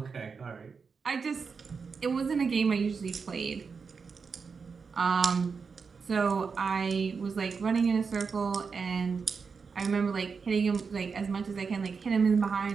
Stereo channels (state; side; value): quieter; left; 5.3 dB